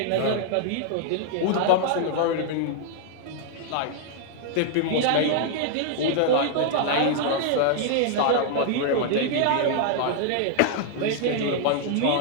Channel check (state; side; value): different; both; correlation -0.01